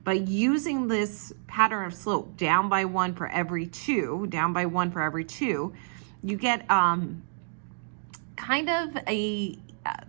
By using this pattern of slope, down by 1 for every 2, down by 1 for every 2, you get kind of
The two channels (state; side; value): silent; left; digital silence